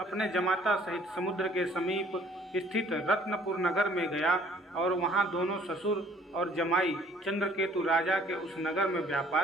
जमाता सहित समुद्र के समीप स्थित रत्नपुर नगर में गया और वहां दोनों ससुर और जमाई चंद्रकेतु राजा के उस नगर में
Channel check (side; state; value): both; normal; correlation 0.57